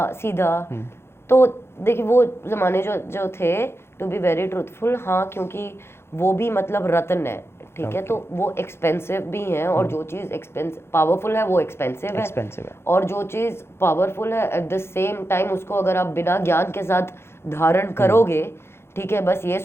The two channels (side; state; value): right; late; 0.12 ms